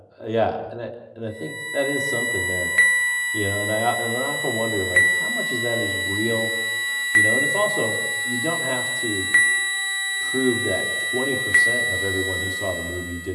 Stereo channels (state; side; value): identical; both; correlation 1.00